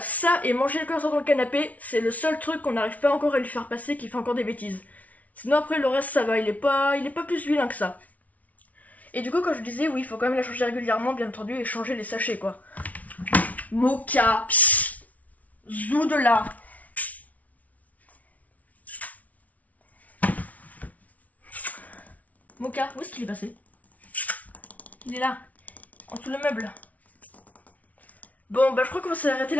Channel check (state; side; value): late; right; 0.070 ms